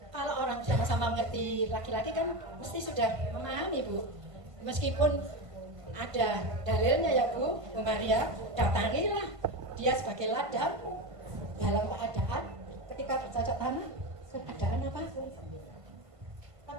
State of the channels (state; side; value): late; left; 1.5 ms